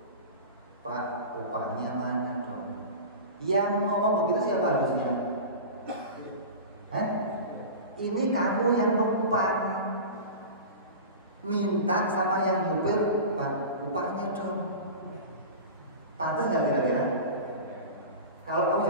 Pak, upahnya mana dong? Yang ngomong begitu siapa harusnya? Ini kamu yang numpang, minta sama yang ngupir, Pak, upahnya dong. Pantas nggak kira-kira? Kalau kamu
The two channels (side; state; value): both; inverted; correlation -0.31